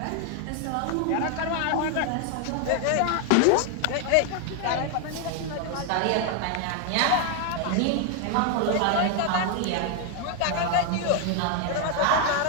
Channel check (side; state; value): both; different; correlation 0.00